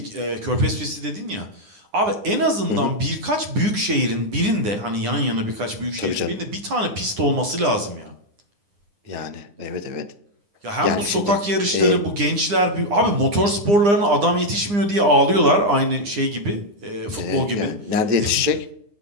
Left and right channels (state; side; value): late; left; 9.9 ms